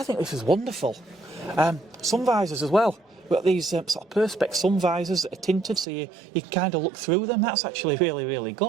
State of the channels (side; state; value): left; drops out; at 5.9 s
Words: think this is wonderful. Sun visors as well. We've got these sort of perspex sun visors that are tinted, so you can kind of look through them. That's actually really, really